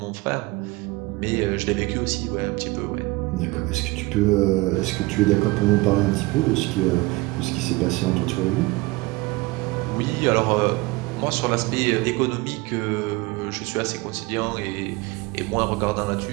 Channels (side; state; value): left; quieter; 22.4 dB